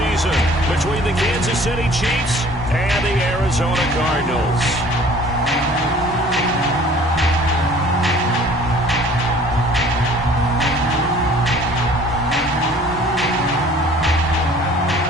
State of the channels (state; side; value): normal; both; correlation 0.51